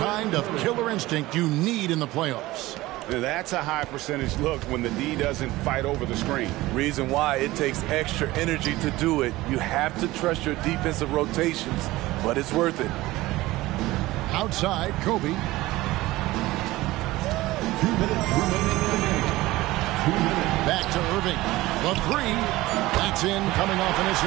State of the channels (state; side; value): quieter; left; 18.4 dB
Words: of killer instinct you need in the playoffs. That's a high percentage look when the D doesn't fight over the screen. Reason why it takes extra energy to do it. You have to trust your defensive rotations, but it's worth it. Outside, Kobe. 2 minutes remaining in the game. 2 minutes. Back to Irving. The three. That's in, coming off an